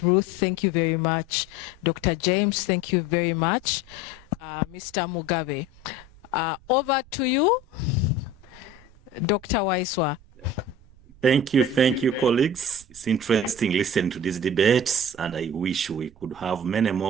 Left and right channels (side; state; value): right; noise; rumble, 24 dB below the sound